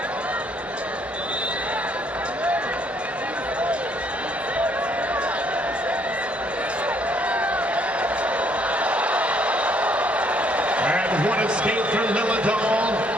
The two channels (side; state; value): both; normal; correlation 0.66